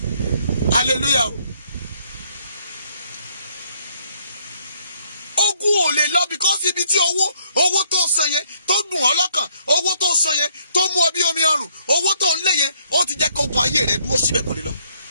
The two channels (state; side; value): inverted; both; correlation -0.69